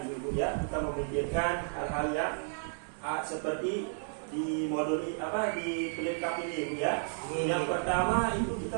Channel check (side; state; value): left; silent; 56 dB below the other